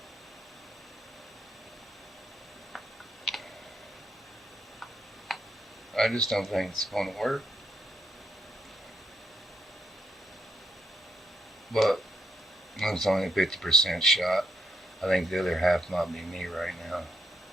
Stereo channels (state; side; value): normal; both; correlation 0.78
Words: I just don't think it's going to work. But it's only a 50% shot. I think the other half might be me right now.